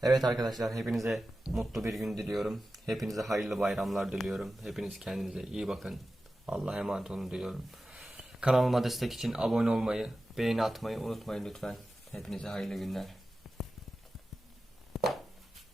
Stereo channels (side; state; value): both; normal; correlation 0.94